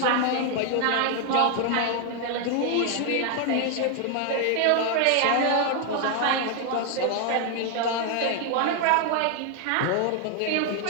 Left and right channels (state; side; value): different; both; correlation 0.00